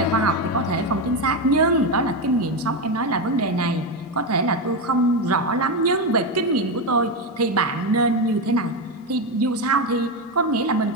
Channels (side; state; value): both; normal; correlation 0.11